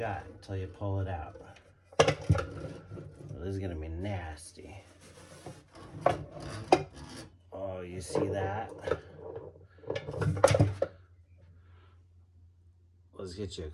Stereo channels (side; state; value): both; identical; correlation 1.00